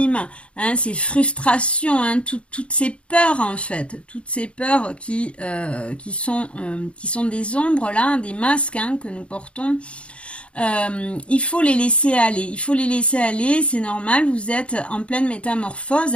hein, ces frustrations, hein, toutes ces peurs en fait, toutes ces peurs qui sont des ombres là, des masques hein, que nous portons. Il faut les laisser aller, c'est normal, vous êtes en pleine métamorphose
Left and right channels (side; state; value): right; late; 0.059 ms